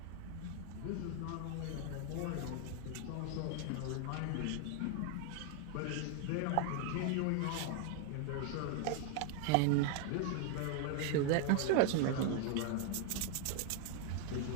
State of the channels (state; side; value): different; both; correlation 0.01